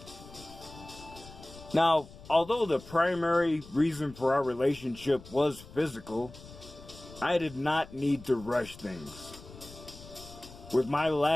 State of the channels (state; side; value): noise; left; rumble, 18 dB below the sound